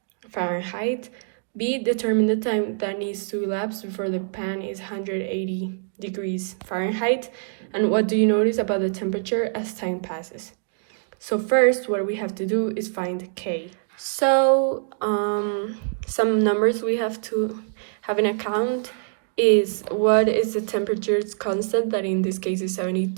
Fahrenheit. B, determine the time that needs to elapse before the pan is 180 degrees Fahrenheit. And what do you notice about the temperature as time passes? So first, what we have to do is find K. So some numbers we have to have in account is what is the temperature's constant, that in this case is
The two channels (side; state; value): left; silent; digital silence